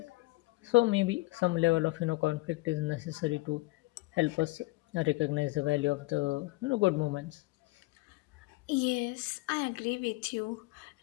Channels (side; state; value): right; quieter; 21.7 dB